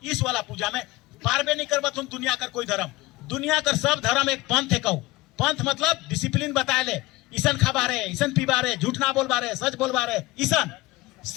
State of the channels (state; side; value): quieter; right; 19.7 dB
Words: इस वाला पूजा में पारबे नहीं कर तुम दुनिया का कोई धर्म। दुनिया का सब धर्म एक पंथ है, कहू पंथ मतलब डिसिप्लिन बताए ले, ईसन खबा रहे, ईसन पीबा रहे, झूठ ना बोलबा रहे, सच बोलबा रहे, ईसन